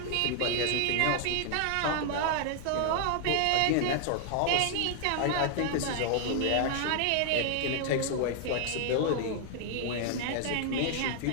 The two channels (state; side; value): different; both; correlation 0.00